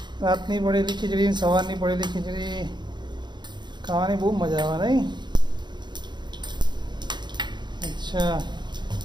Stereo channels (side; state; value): left; late; 0.21 ms